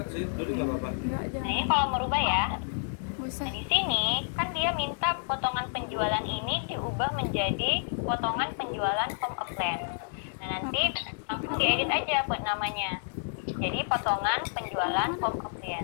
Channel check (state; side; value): silent; right; 58 dB below the other